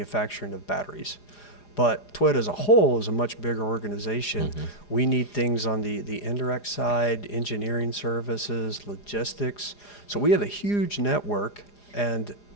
of batteries. But Toyota as a whole is a much bigger organization. We need things on the indirect side, engineering services, logistics. So we have a huge network, and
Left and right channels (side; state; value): right; late; 4.9 ms